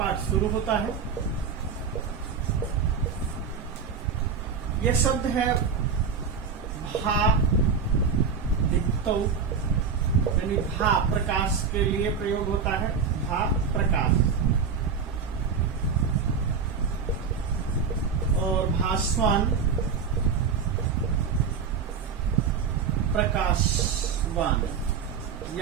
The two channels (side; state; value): left; quieter; 6.0 dB